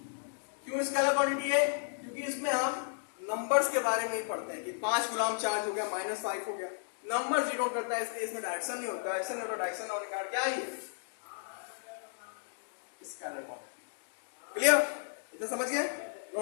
क्यों स्केलर क्वांटिटी है, क्योंकि इसमें हम नंबर्स के बारे में ही पढ़ते हैं कि 5 कूलाम चार्ज हो गया, -5 हो गया, नंबर जीरो करता है, इसलिए इसमें डायरेक्शन नहीं होता, डायरेक्शन नहीं होता, डायरेक्शन होने का क्या है, स्केलर क्वांटिटी। क्लियर, इतना समझ गए?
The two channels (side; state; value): right; silent; digital silence